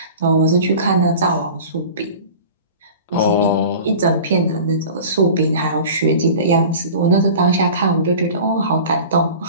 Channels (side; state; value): both; inverted; correlation -0.39